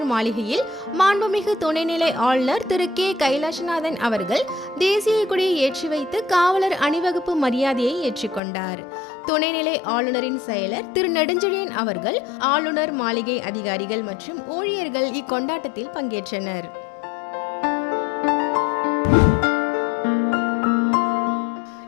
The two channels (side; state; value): right; drops out; at 8.4 s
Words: மாளிகையில் மாண்புமிகு துணைநிலை ஆளுநர் திரு கே கைலாசநாதன் அவர்கள் தேசிய கொடியை ஏற்றி வைத்து காவலர் அணிவகுப்பு மரியாதையை ஏற்றுக்கொண்டார். துணைநிலை ஆளுநரின் செயலர் திரு நெடுஞ்செழியன் அவர்கள், ஆளுநர் மாளிகை அதிகாரிகள் மற்றும் ஊழியர்கள் இக்கொண்டாட்டத்தில் பங்கேற்றனர்.